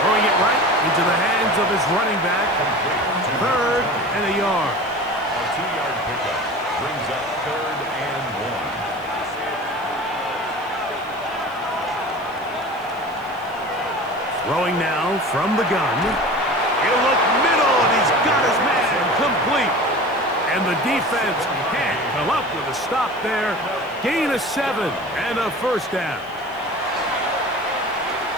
Throwing it right into the hands of his running back. 3rd and a yard. A 2-yard pickup brings up 3rd and 1. Throwing now from the gun. He'll look middle, and he's got his man complete. And the defense can't come up with a stop there. Gain of 7 and a 1st down.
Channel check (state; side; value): noise; left; hiss, 27 dB below the sound